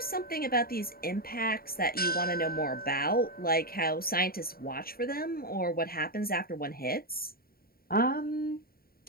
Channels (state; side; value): late; right; 0.43 ms